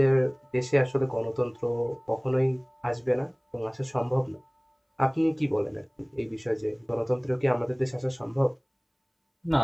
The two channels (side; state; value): both; identical; correlation 1.00